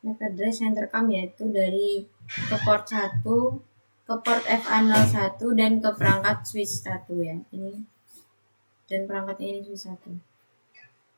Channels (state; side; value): inverted; both; correlation -1.00